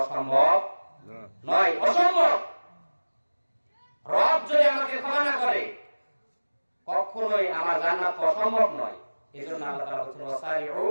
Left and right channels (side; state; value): both; inverted; correlation -1.00